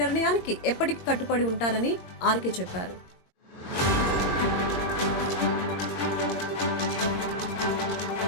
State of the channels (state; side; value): late; right; 22 ms